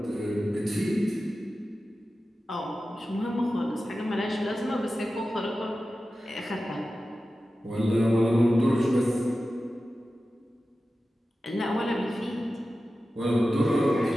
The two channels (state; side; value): normal; both; correlation 0.94